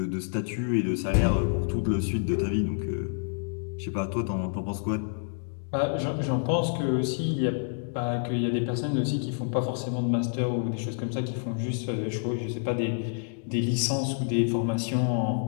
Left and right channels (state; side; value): silent; right; digital silence